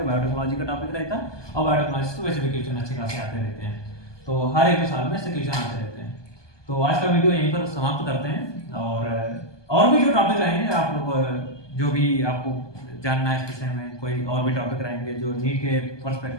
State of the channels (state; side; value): late; right; 1.2 ms